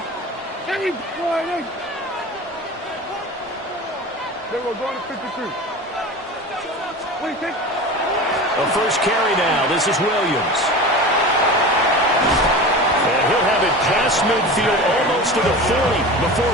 Hey, boy, they were going to 53. What do you think? A first carry now. This is Williams. And he'll have it past midfield almost to the 40 before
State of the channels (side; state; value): both; normal; correlation 0.32